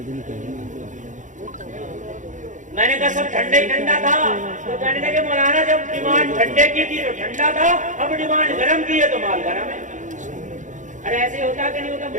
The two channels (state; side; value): late; left; 0.36 ms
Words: मैंने कहा सब ठंडा ही ठंडा था। तो कहने लगे मौलाना जब डिमांड ठंडे की थी तो ठंडा था, अब डिमांड गरम की है तो माल गरम है। अरे ऐसे होता कि नहीं होता